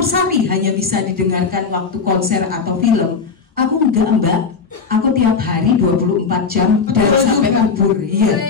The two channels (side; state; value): right; quieter; 5.3 dB